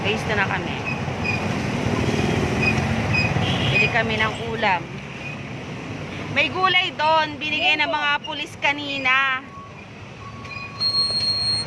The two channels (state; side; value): identical; both; correlation 1.00